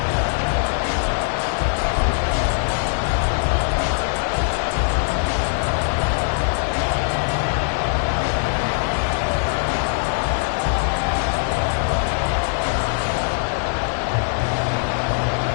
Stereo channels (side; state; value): right; silent; digital silence